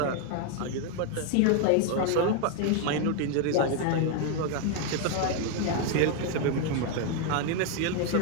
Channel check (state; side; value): different; both; correlation 0.01